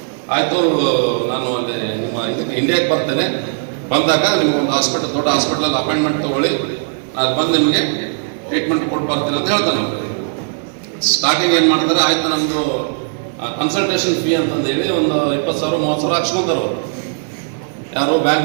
ಆಯಿತು ನಾನು ಅಲ್ಲಿ ನಿಮ್ಮ ಇದಕ್ಕೆ ಇಂಡಿಯಾಕ್ಕೆ ಬರ್ತೇನೆ, ಬಂದಾಗ ನಿಮ್ಗೊಂದು ಹಾಸ್ಪಿಟಲ್, ದೊಡ್ಡ ಹಾಸ್ಪಿಟಲಲ್ಲಿ ಅಪಾಯಿಂಟ್ಮೆಂಟ್ ತೊಗೊಳ್ಳಿ, ಅದು ಬಂದು ನಿಮಗೆ ಟ್ರೀಟ್ಮೆಂಟ್ ಕೊಟ್ಟು ಬರ್ತೀನಿ ಅಂತ ಹೇಳ್ತಾನೆ. ಸ್ಟಾರ್ಟಿಂಗ್ ಏನು ಮಾಡ್ತಾರೆ, ಆಯ್ತು ನಮ್ಮದು ಕನ್ಸಲ್ಟೇಷನ್ ಫೀ ಅಂತಂದೇಳಿ ಒಂದು 20,000 30,000 ಹಾಕ್ಸ್ಕೊಂತಾರೆ ಅವರು, ಯಾರು ಬ್ಯಾಂಕ್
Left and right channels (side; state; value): left; silent; 56 dB below the other